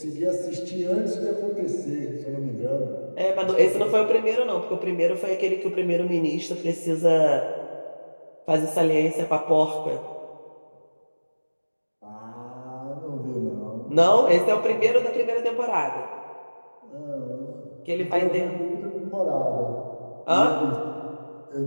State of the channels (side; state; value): both; inverted; correlation -1.00